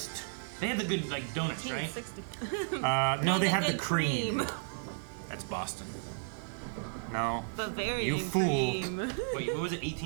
They have the good like donuts, right? 1960. No, they the have the good cream. That's Boston. No. Bavarian You fool. cream. Wait, what was it?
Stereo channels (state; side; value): silent; left; digital silence